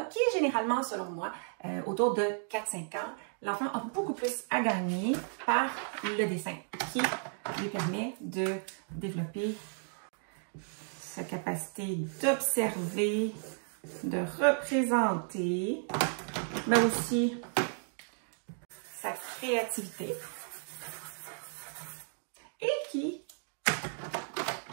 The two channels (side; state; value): left; silent; 55 dB below the other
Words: qui est généralement, selon moi, autour de 4-5 ans, l'enfant a beaucoup plus à gagner par le dessin, qui lui permet de développer sa capacité d'observer, de représenter, mais aussi sa créativité et qui